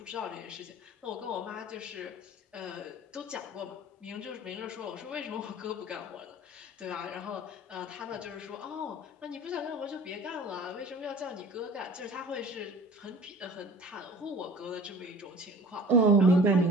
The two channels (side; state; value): both; normal; correlation 0.44